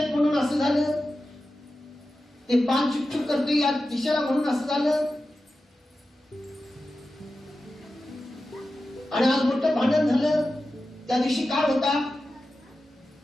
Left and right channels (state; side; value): normal; both; correlation 0.93